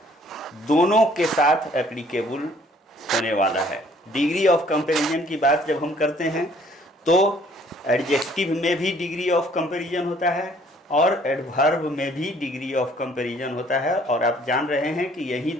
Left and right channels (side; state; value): both; normal; correlation 0.60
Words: दोनों के साथ एप्लीकेबल होने वाला है। डिग्री ऑफ कंपैरिजन की बात जब हम करते हैं तो एडजेक्टिव में भी डिग्री ऑफ कंपैरिजन होता है और एडवर्ब में भी डिग्री ऑफ कंपैरिजन होता है, और आप जान रहे हैं कि यही